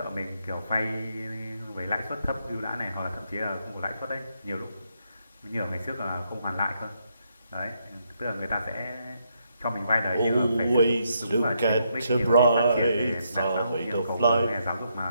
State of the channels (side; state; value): both; inverted; correlation -0.77